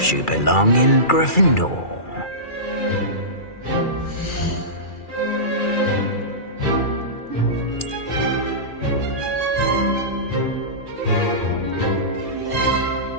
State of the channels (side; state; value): right; late; 2.3 ms